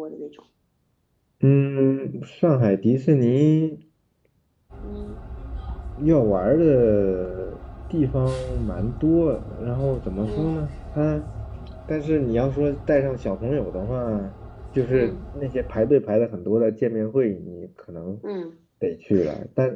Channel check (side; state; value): both; identical; correlation 1.00